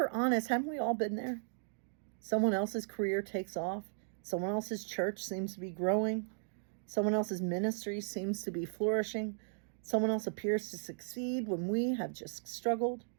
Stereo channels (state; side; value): silent; left; digital silence